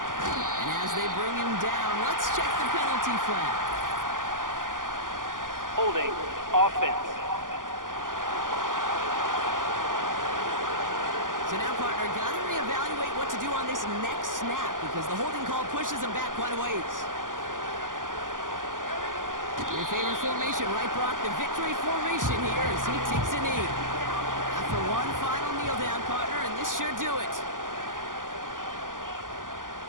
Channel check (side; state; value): left; late; 0.89 ms